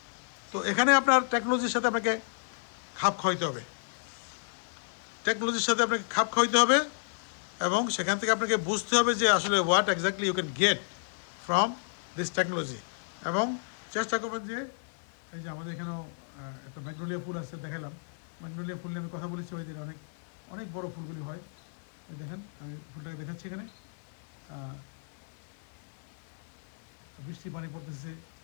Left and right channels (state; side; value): silent; right; digital silence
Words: তো এখানে আপনার টেকনোলজির সাথে আপনাকে খাপ খাওয়াইতে হবে, টেকনোলজির সাথে আপনাকে খাপ খাওয়াইতে হবে, এবং সেখান থেকে আপনাকে বুঝতে হবে যে আসলে what exactly you can get from this technology. এবং চেষ্টা করবেন যে এই যে আমাদের এখানেও একটা ম্যাগনোলিয়া ফুল আসছে, দেখালাম ম্যাগনোলিয়া ফুল নিয়ে আমি কথা বলেছি, ওই দিন অনেক অনেক বড় ফুলগুলি হয়। দেখেন আমি ফুলটাকে দেখাচ্ছি, এখানে বৃষ্টি পানি পড়তেছে,